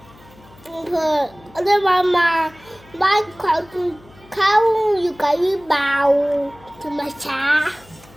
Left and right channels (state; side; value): noise; left; hum, 25 dB below the sound